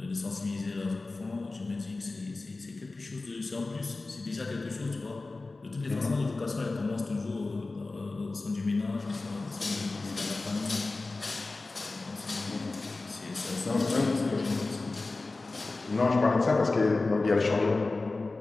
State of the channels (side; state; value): right; quieter; 3.4 dB